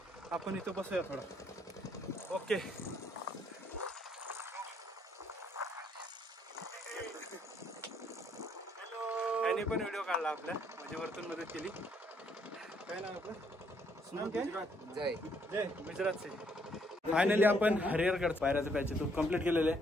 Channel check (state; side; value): normal; both; correlation 0.69